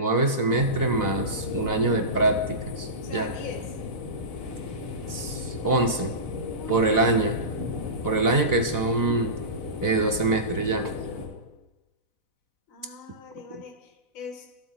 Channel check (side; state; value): right; late; 4.0 ms